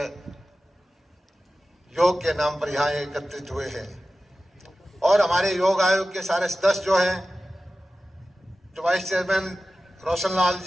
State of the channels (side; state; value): both; normal; correlation 0.95